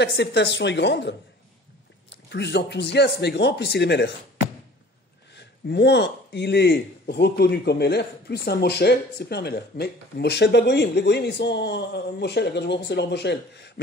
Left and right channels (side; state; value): both; normal; correlation 0.47